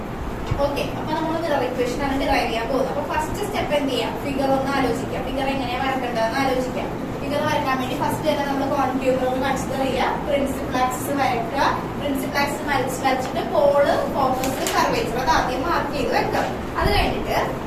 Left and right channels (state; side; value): identical; both; correlation 1.00